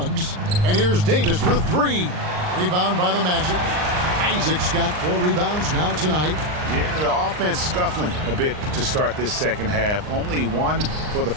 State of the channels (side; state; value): left; late; 39 ms